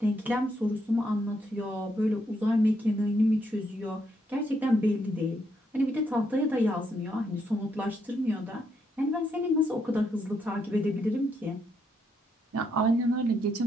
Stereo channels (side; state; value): both; normal; correlation 0.77